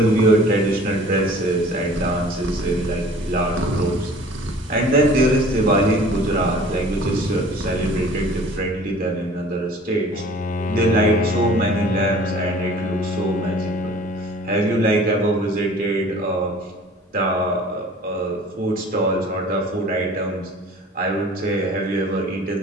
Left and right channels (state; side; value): normal; both; correlation 0.48